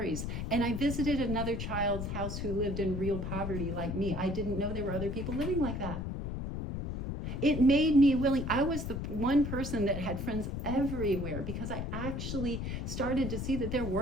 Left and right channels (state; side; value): noise; left; rumble, 4 dB below the sound